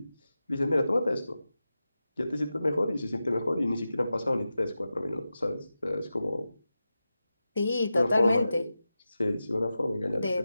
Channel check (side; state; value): both; inverted; correlation -0.93